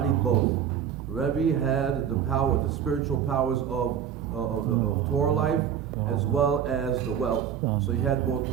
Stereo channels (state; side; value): quieter; left; 8.8 dB